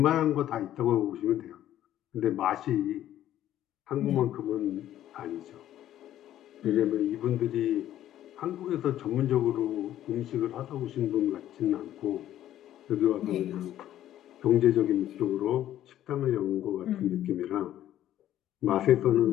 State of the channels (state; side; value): quieter; right; 12.3 dB